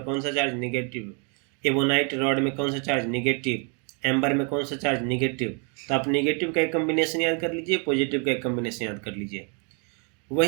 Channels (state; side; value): quieter; left; 36.9 dB